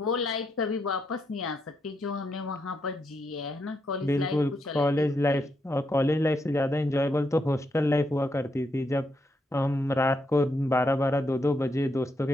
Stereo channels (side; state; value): both; normal; correlation 0.80